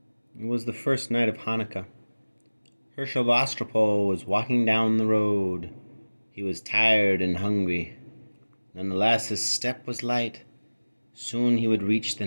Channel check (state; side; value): inverted; both; correlation -1.00